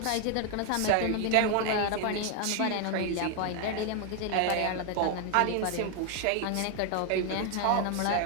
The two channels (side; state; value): both; different; correlation 0.00